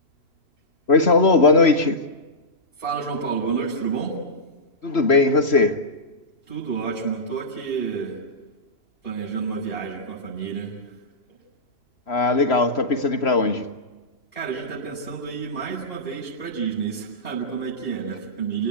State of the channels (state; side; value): late; right; 3.0 ms